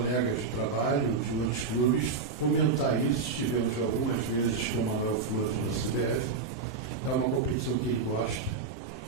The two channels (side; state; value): left; quieter; 4.7 dB